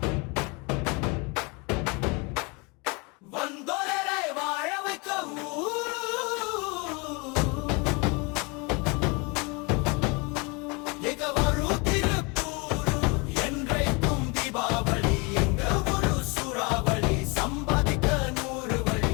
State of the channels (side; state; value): right; quieter; 29.6 dB